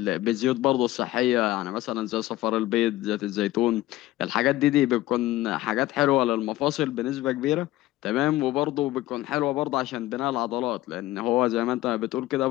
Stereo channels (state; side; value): quieter; right; 16.3 dB